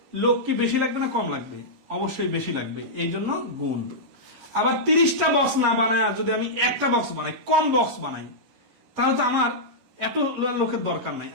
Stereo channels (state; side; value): late; left; 11 ms